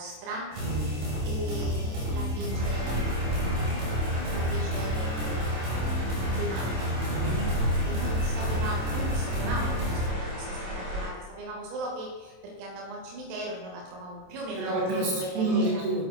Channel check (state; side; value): late; left; 27 ms